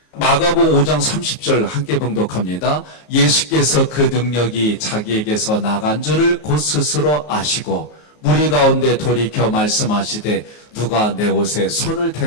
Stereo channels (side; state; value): right; late; 33 ms